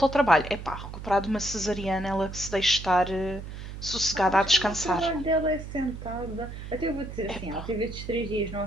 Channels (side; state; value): right; noise; hum, 10 dB below the sound